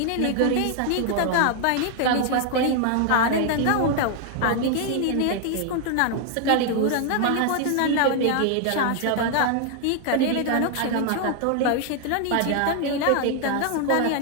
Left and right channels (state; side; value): different; both; correlation 0.00